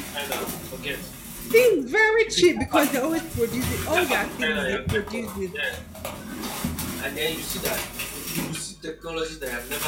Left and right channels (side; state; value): both; identical; correlation 1.00